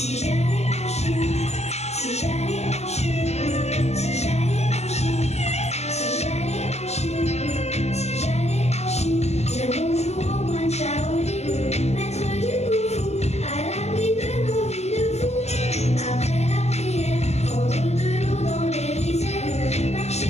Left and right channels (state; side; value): late; right; 0.32 ms